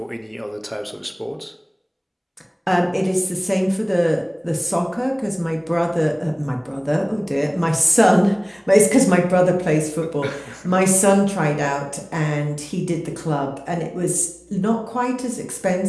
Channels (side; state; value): both; identical; correlation 1.00